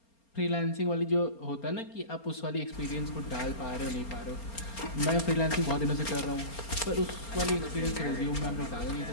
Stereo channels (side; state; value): right; late; 4.3 ms